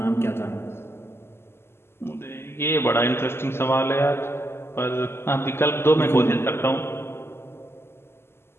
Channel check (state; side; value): late; right; 0.12 ms